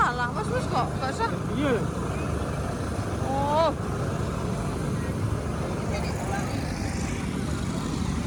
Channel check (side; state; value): both; identical; correlation 1.00